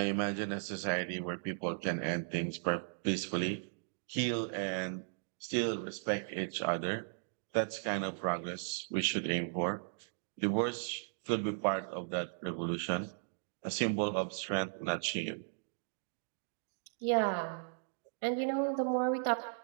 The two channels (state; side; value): silent; left; digital silence